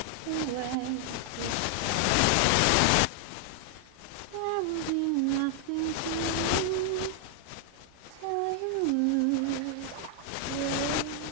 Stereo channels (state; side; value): different; both; correlation 0.00